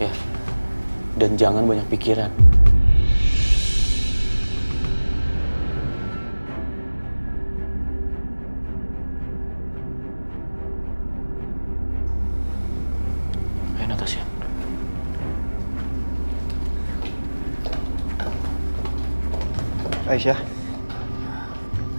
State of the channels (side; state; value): both; inverted; correlation -1.00